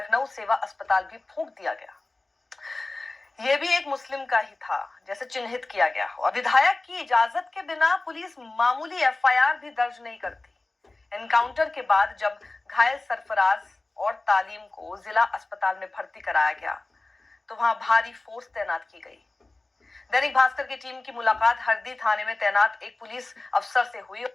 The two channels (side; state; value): right; quieter; 3.1 dB